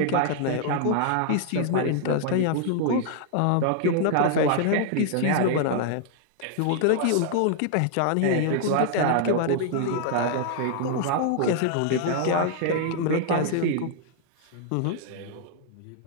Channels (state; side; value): different; both; correlation 0.00